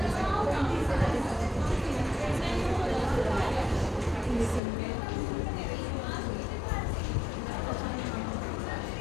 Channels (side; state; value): right; drops out; at 4.6 s